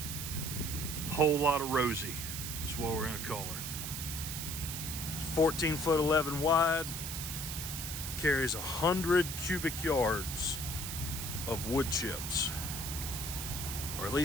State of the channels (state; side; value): noise; right; hiss, 5 dB below the sound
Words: Whole lot of Rosie. That's what we're gonna call her. 14 foot 11 wide, carries 100 cubic yards of wood chips, or at